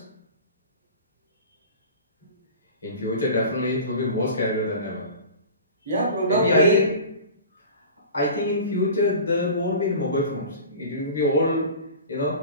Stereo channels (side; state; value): both; inverted; correlation -0.37